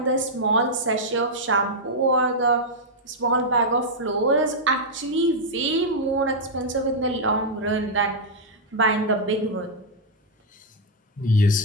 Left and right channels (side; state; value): both; normal; correlation -0.04